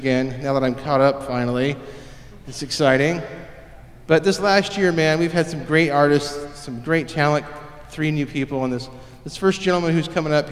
now that I'm caught up finally. It's exciting. But this last year, man, we've had some great artists, some great talent, 3 new people, and this first gentleman who's coming up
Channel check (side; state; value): both; identical; correlation 1.00